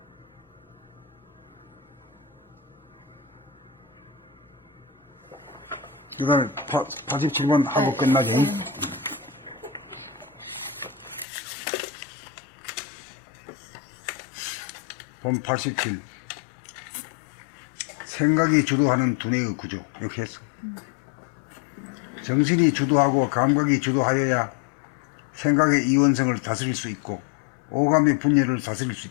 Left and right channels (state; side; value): drops out; right; at 11.2 s